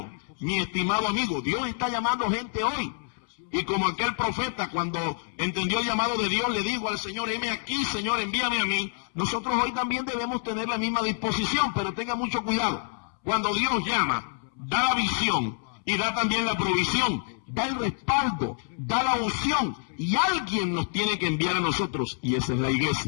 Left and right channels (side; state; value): right; silent; 60 dB below the other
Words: mi estimado amigo, Dios está llamando gente hoy. Y como aquel profeta, cuando entendió el llamado de Dios, le dijo al Señor: heme aquí, Señor, envíame a mí. Nosotros hoy también debemos tener la misma disposición, pero tenga mucho cuidado. Cuando Dios llama, da la visión y da también la provisión, da el respaldo, da la unción, y alguien nos tiene que enviar a nosotros, y esa es la